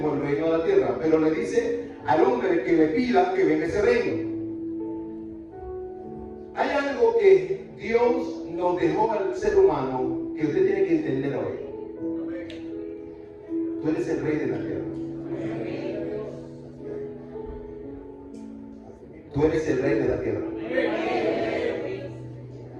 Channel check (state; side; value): identical; both; correlation 1.00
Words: el reino de la tierra? Pero le dice al hombre que le pida que venga ese reino. Hay algo que Dios nos dejó al ser humano que usted tiene que entender hoy. Tú eres el rey de la tierra. Tú eres el rey de la tierra.